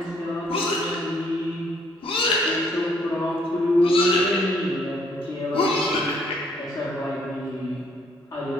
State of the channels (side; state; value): both; normal; correlation 0.66